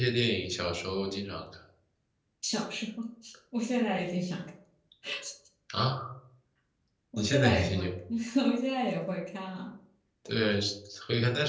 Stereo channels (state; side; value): identical; both; correlation 1.00